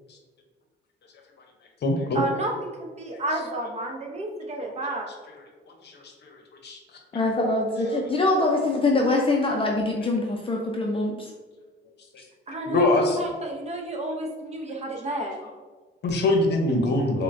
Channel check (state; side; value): normal; both; correlation 0.38